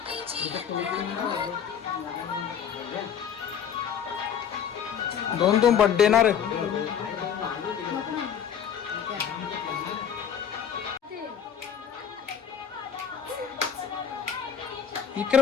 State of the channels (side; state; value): right; quieter; 8.1 dB